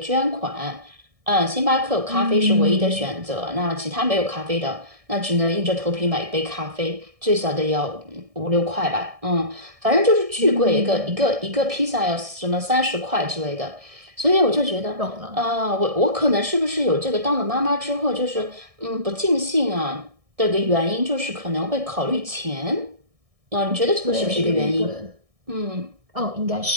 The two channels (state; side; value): late; left; 1.6 ms